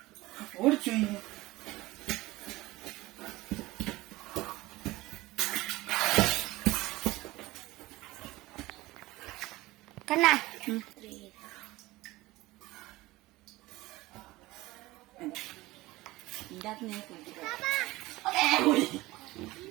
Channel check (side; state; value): left; quieter; 19.2 dB